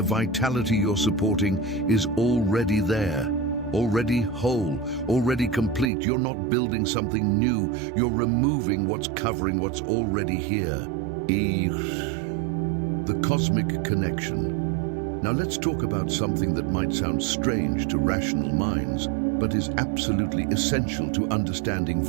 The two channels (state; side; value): drops out; left; at 5.9 s